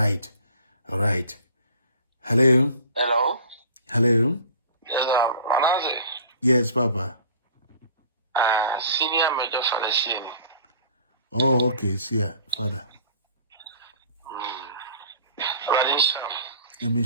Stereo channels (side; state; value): both; inverted; correlation -0.47